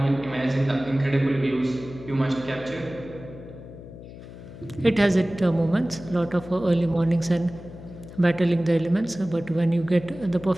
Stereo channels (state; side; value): noise; left; hum, 15 dB below the sound